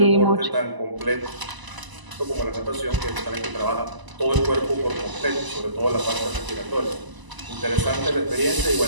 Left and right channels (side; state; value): left; late; 1.0 ms